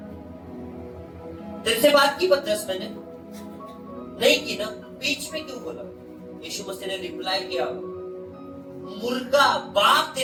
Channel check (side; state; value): both; identical; correlation 1.00